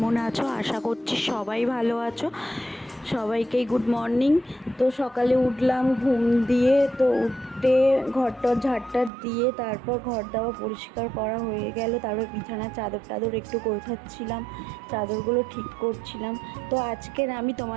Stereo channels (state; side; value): drops out; left; at 9.1 s